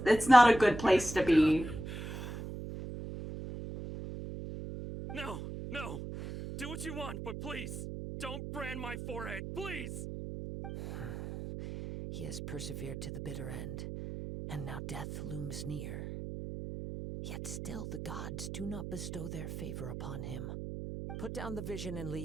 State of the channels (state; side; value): noise; right; hum, 7 dB below the sound